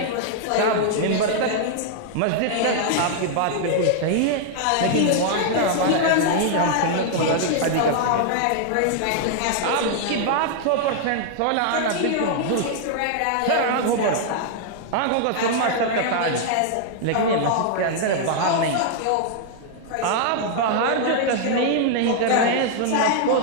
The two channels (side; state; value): both; different; correlation -0.01